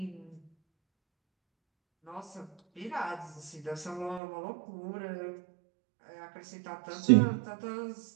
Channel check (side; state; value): left; drops out; at 4.2 s